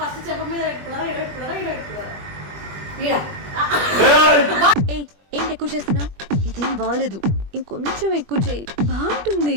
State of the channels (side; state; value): left; late; 21 ms